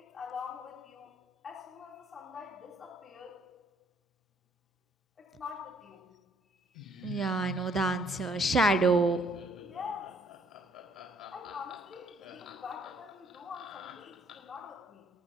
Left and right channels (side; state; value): both; normal; correlation 0.64